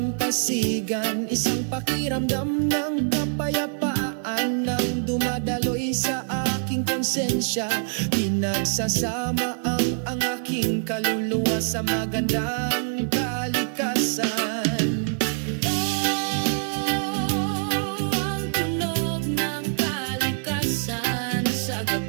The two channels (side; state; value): left; silent; 62 dB below the other